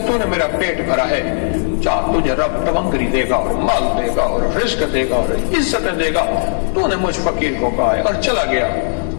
मेरा पेट भरा है, चाह तुझे रब तवंगरी देगा और माल देगा और रिस्क देगा और इज्जतें देगा, तूने मुझ फकीर को कहा है। और चला गया।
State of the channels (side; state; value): right; silent; digital silence